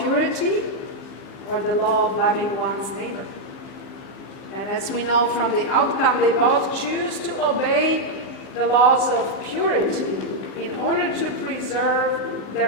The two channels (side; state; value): right; late; 15 ms